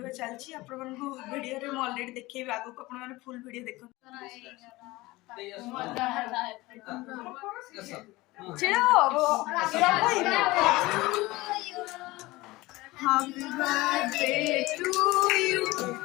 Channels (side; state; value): right; quieter; 20.3 dB